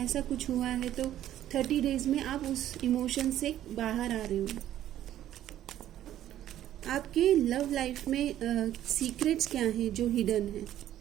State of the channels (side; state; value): left; quieter; 12.2 dB